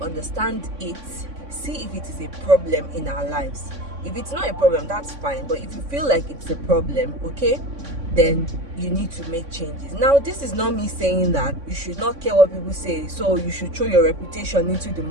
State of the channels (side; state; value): left; late; 3.6 ms